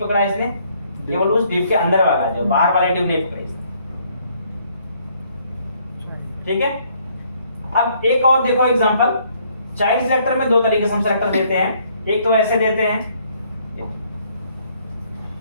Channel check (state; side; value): inverted; both; correlation -0.66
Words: पकड़ा इसने, केवल उस div के अंदर वाला, जो बाहर वाले div नहीं पकड़े, ठीक है। अब एक और देखो एग्जांपल, चाइल्ड सिलेक्टर में दो तरीके से हम सिलेक्टर देते हैं। एक तो ऐसे देते हैं,